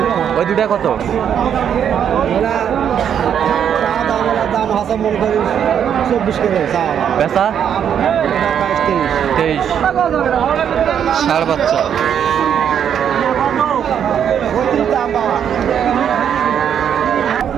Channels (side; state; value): left; quieter; 8.7 dB